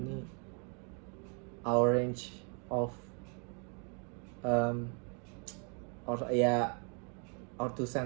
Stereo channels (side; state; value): left; quieter; 38.1 dB